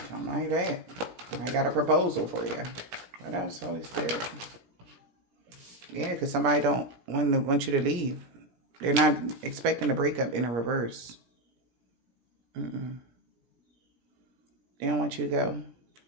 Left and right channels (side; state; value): left; late; 17 ms